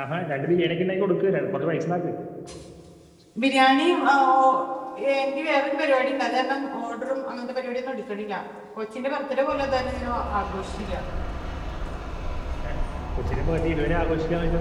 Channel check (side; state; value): both; identical; correlation 1.00